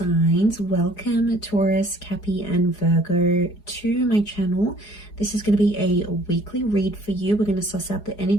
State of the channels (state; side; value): late; right; 4.8 ms